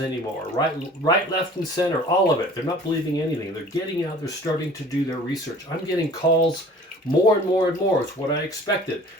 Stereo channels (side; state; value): both; normal; correlation 0.47